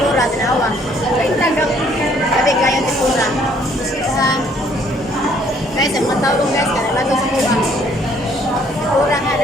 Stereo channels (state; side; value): normal; both; correlation 0.63